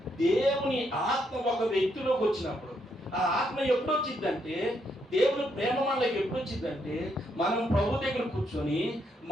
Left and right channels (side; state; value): both; normal; correlation 0.76